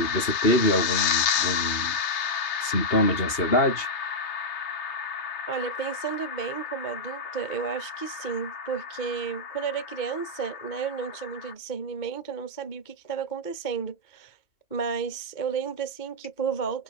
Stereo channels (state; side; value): late; right; 2.8 ms